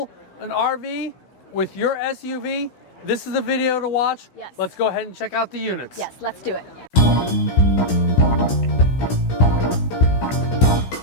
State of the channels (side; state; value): right; late; 16 ms